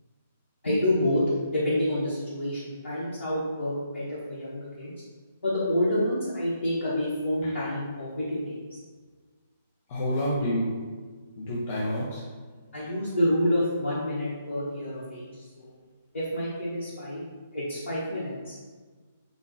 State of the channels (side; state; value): both; inverted; correlation -0.77